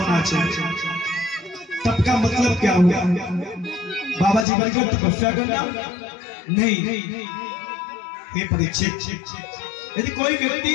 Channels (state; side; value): drops out; right; at 4.5 s